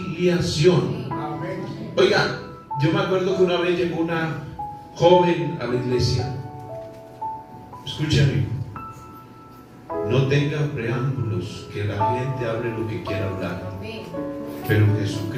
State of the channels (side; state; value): both; identical; correlation 1.00